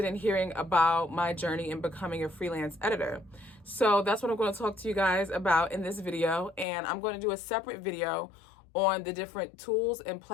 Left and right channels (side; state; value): right; drops out; at 6.7 s